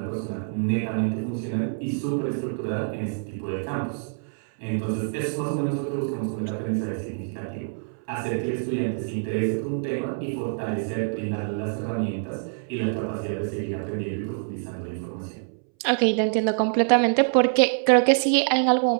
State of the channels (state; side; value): silent; left; 61 dB below the other